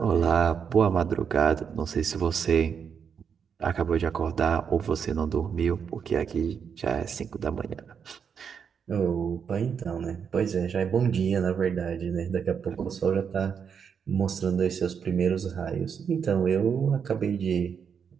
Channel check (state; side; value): quieter; left; 7.0 dB